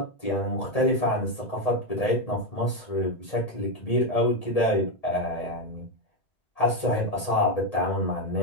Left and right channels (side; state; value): right; late; 1.8 ms